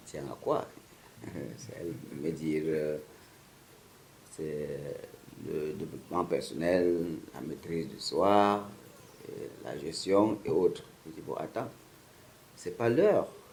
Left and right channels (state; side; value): identical; both; correlation 1.00